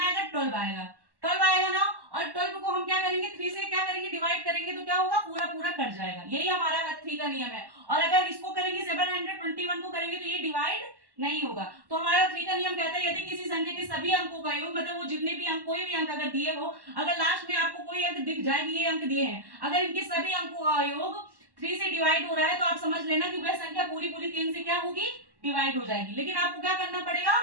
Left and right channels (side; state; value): left; late; 1.1 ms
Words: आएगा 12 आएगा, 12 आएगा ना। और 12 को हम क्या करेंगे, करेंगे 3 से क्या करेंगे डिवाइड करेंगे तो क्या होगा पूरा पूरा कट जाएगा। यही हमारा 3 का नियम है। और अगर इसको करेंगे 721 को करेंगे तो ये डिवाइड नहीं होगा। तो हमारा 3 का नियम कहता है यदि किसी संख्या के सभी अंकों का योग, मतलब वो जितने भी अंक, कोई भी अंक अगर दिए हो, अगर लास्ट में आपको कोई अंक दिख जाए ये अंक दिए हैं, अगर इनके सभी अंकों का योग 3 से डिवाइड हो रहा है तो आप समझ लेना कि वह संख्या पूरी पूरी 3 से क्या होगी डिवाइड हो जाएगी। लेकिन आपको क्या करना पड़ेगा,